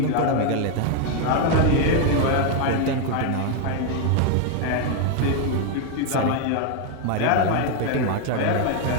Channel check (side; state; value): both; different; correlation 0.01